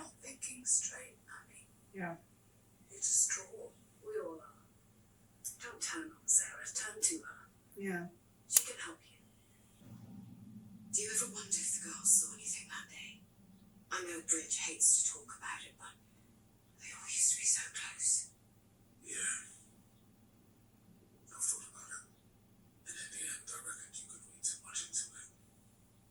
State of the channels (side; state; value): both; identical; correlation 1.00